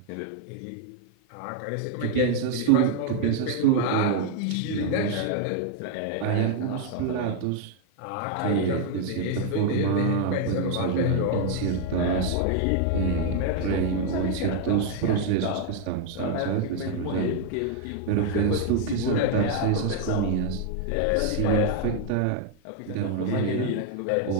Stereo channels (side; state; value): both; different; correlation 0.00